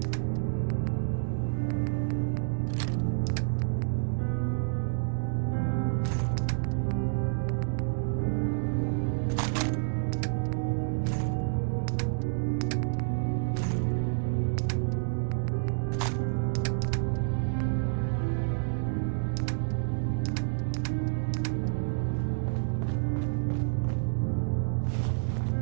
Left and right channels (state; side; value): silent; left; digital silence